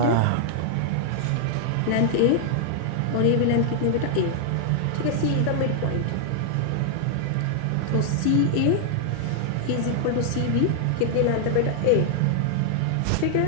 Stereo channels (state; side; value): different; both; correlation -0.01